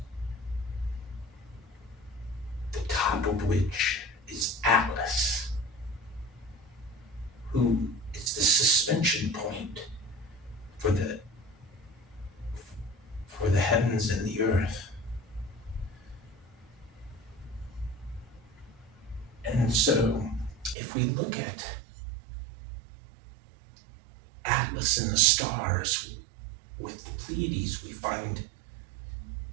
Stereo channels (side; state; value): left; drops out; at 20.8 s